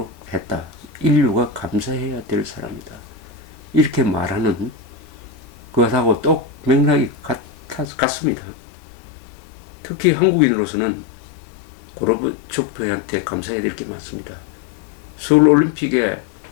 했다. 인류가 감사해야 될 사람이다. 이렇게 말하는 그것하고 똑 맥락이 같습니다. 특히 한국인으로서는 고르바초프한테 감사해야 될 게 많습니다. 서울올림픽에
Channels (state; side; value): drops out; right; at 7.9 s